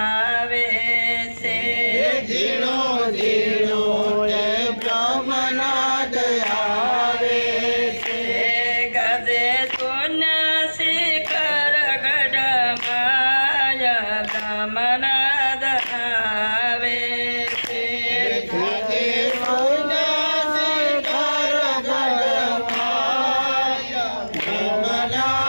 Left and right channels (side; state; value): both; inverted; correlation -1.00